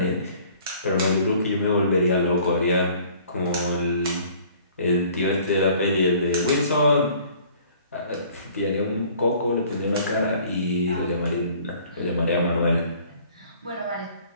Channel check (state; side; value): inverted; both; correlation -0.54